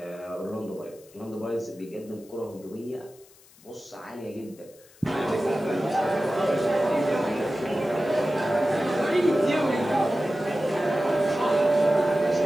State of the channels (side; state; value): left; noise; hiss, 26 dB below the sound